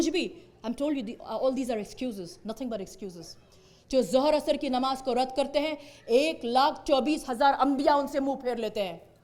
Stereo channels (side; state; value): both; identical; correlation 1.00